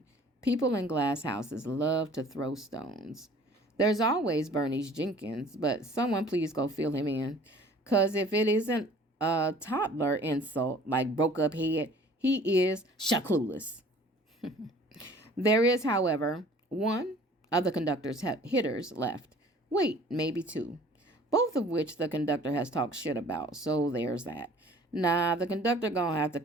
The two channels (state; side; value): normal; both; correlation 0.50